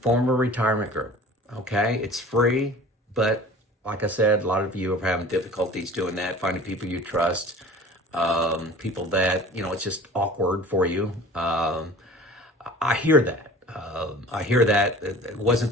form a retirement group, okay? It's free, but like I said, a lot of you are having difficulties doing that, finding people you trust, people that, it's just awkward for you. I hear that. It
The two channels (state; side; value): normal; both; correlation 0.43